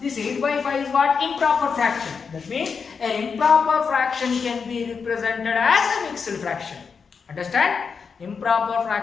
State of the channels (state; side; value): quieter; right; 5.7 dB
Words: This 8 by 5 is what? Improper fraction. That means an improper fraction can be represented as a mixed fraction. Understand? Improper